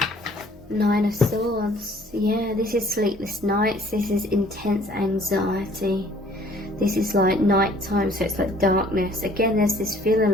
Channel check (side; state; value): both; normal; correlation 0.56